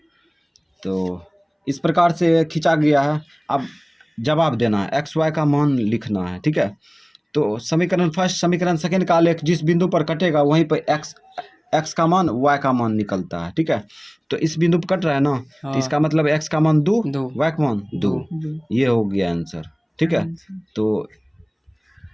तो इस प्रकार से खींचा गया है। अब जवाब देना है, एक्स वाई का मान लिखना है, ठीक है। तो समीकरण फर्स्ट समीकरण सेकेंड का आलेख जिस बिंदु पर कटेगा वहीं पर एक्स का मान वाई का मान निकलता है, ठीक है। तो इस बिंदु पर कट रहा है ना, तो इसका मतलब एक्स का मान 2, वाई का मान 2। ये हो गया आंसर, ठीक है। तो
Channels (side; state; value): both; identical; correlation 1.00